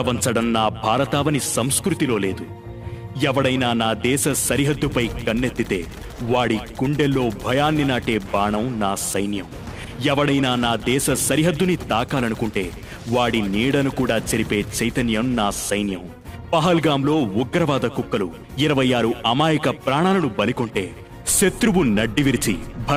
నా భారతావని సంస్కృతిలో లేదు. ఎవడైనా నా దేశ సరిహద్దుపై కన్నెత్తితే వాడి గుండెల్లో భయాన్ని నాటే బాణం నా సైన్యం. ఎవడైనా నా దేశ సరిహద్దుని తాకాలనుకుంటే వాడి నీడను కూడా చెరిపే చైతన్యం నా సైన్యం. పహల్గాంలో ఉగ్రవాద కుక్కలు 26 అమాయక ప్రాణాలను బలికొంటే శత్రువు నడ్డి విరిచి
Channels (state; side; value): identical; both; correlation 1.00